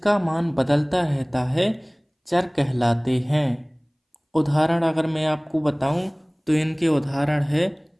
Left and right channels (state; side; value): identical; both; correlation 1.00